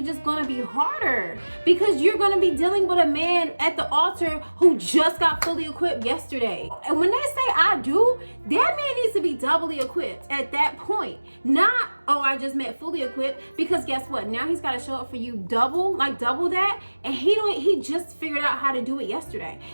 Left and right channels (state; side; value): inverted; both; correlation -1.00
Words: just going to be harder, because you're going to be dealing with a man at the altar who just got fully equipped yesterday. And when they say I do, that man needs to be doubly equipped at that point. Not, oh, I just meant fully equipped, because guess what? Now he's got to show up for you double that. And he just figured out how to do it yesterday.